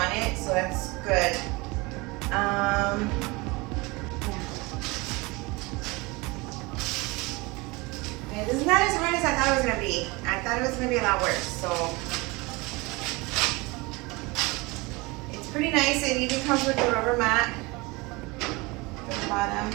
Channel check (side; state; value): left; quieter; 24.7 dB